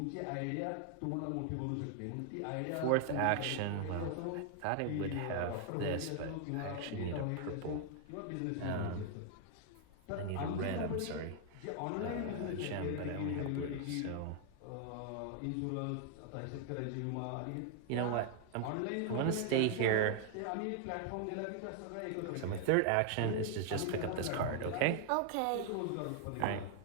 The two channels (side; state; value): both; different; correlation 0.00